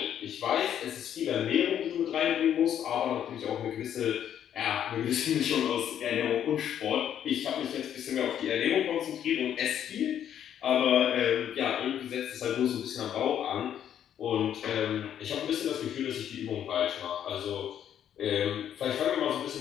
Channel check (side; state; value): right; quieter; 9.9 dB